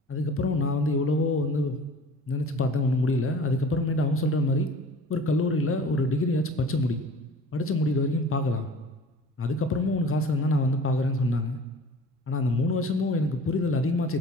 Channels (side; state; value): both; normal; correlation 0.44